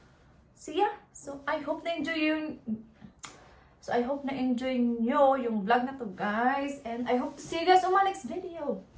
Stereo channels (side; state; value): both; identical; correlation 1.00